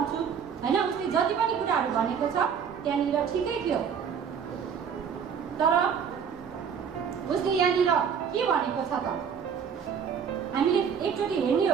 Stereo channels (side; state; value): left; quieter; 7.2 dB